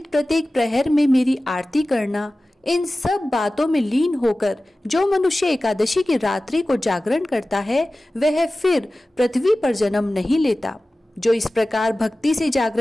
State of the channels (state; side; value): normal; both; correlation 0.96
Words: प्रत्येक प्रहर में मेरी आरती करना, इन सब बातों में लीन होकर जो मनुष्य एकादशी की रात्रि को जागरण करता है वह फिर पृथ्वी पर जन्म नहीं लेता। जो इस प्रकार भक्ति से